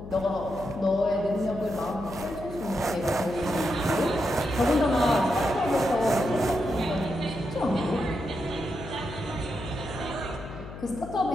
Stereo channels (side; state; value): left; noise; hum, 12 dB below the sound